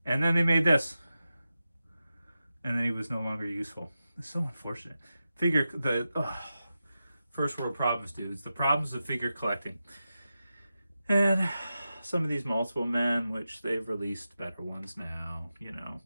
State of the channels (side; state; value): both; inverted; correlation -0.91